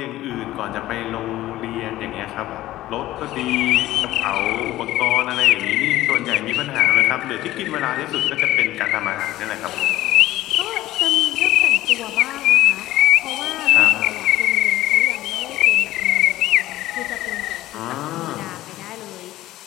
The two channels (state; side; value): quieter; right; 15.5 dB